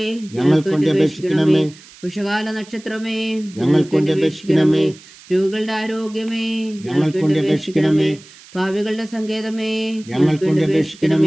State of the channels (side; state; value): right; noise; hiss, 22 dB below the sound